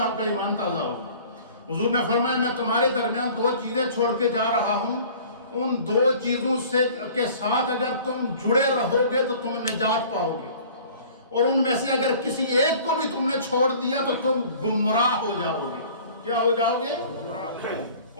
آپ کا ایمان تازہ ہوگا۔ حضور نے فرمایا میں تمہارے درمیان 2 چیزیں چھوڑ کے جا رہا ہوں، ان 2 چیزوں کے ساتھ اگر تم جڑے رہو گے تو تم نجات پاؤ گے، اور ان میں سے اگر کسی ایک کو بھی تم نے چھوڑ دیا تو تم گمراہ ہو جاؤ گے۔ کیا ہو جاؤ گے؟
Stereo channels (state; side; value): inverted; both; correlation -0.48